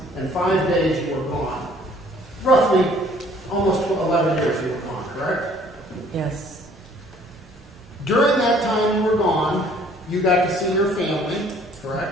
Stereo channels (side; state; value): both; normal; correlation 0.57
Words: and 5 days you were gone. Roughly almost 11 years you were gone, correct? Yes. During that time you were gone, you got to see your family,